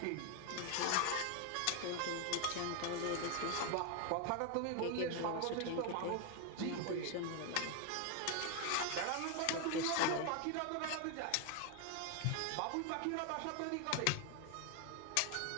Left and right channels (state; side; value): different; both; correlation 0.01